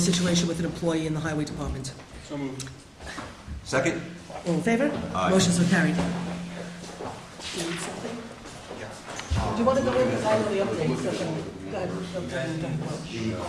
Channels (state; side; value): identical; both; correlation 1.00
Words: with an employee in the highway department. So moved. Second? All in favor? Aye. Motion so carried. Do you want to go in, because I know the update, so The